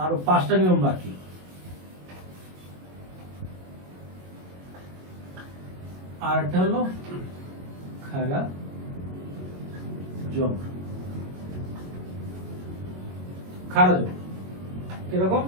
আর 5টা নিয়ম বাকি। আর একটা হলো খারা জবর। খারা জবর কিরকম?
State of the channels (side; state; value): left; late; 22 ms